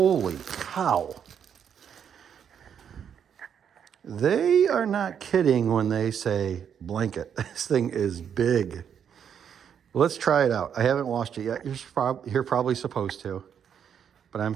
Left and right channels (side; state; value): left; quieter; 8.2 dB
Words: cow. They are not kidding when they say blanket. This thing is big. Let's try it out. I haven't washed it yet. You're probably supposed to, but I'm